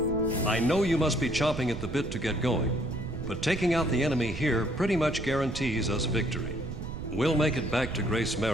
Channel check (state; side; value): noise; right; rumble, 7 dB below the sound